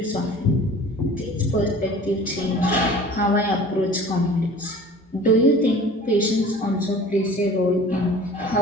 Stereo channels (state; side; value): normal; both; correlation 0.44